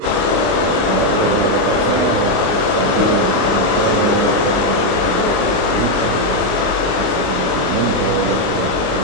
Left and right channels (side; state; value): left; late; 29 ms